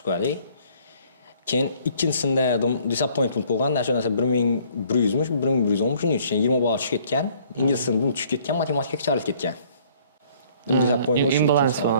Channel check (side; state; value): both; inverted; correlation -0.59